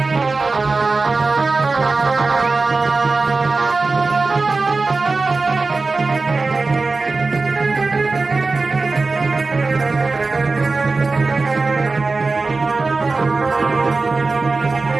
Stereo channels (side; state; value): left; quieter; 3.8 dB